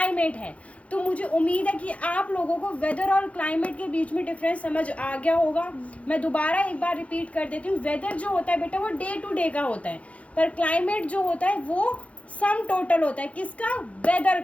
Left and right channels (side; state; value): right; late; 0.064 ms